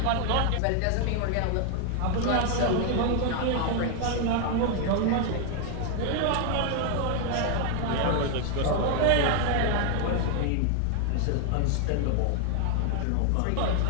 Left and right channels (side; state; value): both; different; correlation 0.00